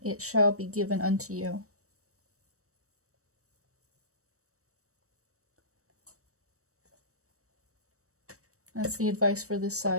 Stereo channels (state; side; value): late; left; 0.65 ms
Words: it shall be given unto you. That's the advice for this